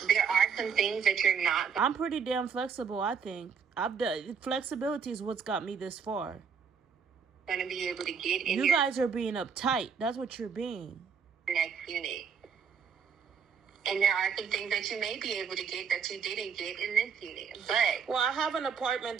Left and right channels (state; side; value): quieter; left; 6.5 dB